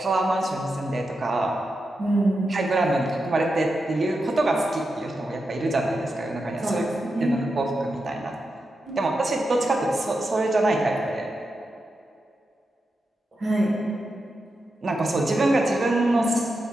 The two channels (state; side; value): normal; both; correlation 0.88